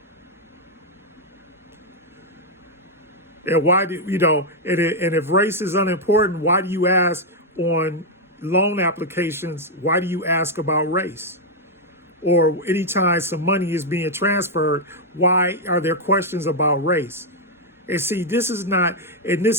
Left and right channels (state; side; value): normal; both; correlation -0.01